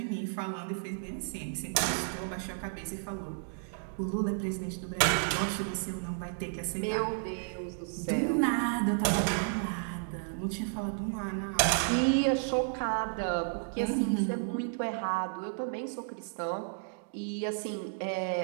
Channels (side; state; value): left; silent; digital silence